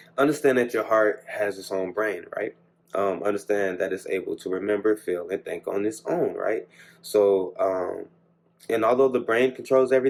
Understand that your heart has its own brain, right? Understand that it's able to remember, feel, and think on its own, right? So, and although the brain controls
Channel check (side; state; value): both; identical; correlation 1.00